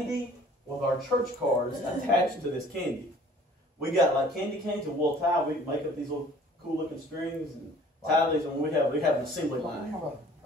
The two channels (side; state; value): both; normal; correlation 0.52